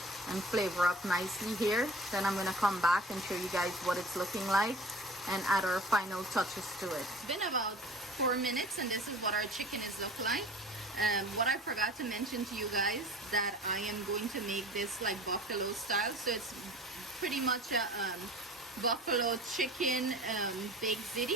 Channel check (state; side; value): normal; both; correlation 0.42